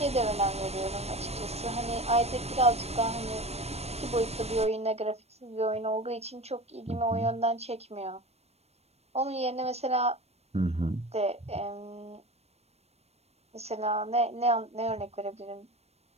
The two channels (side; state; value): left; late; 0.31 ms